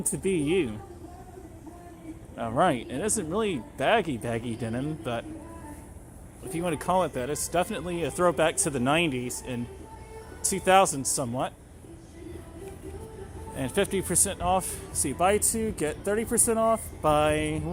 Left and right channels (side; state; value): both; identical; correlation 1.00